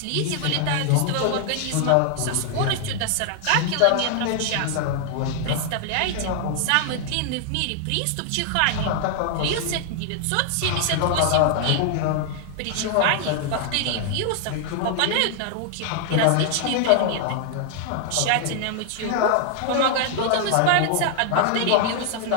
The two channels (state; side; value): different; both; correlation 0.00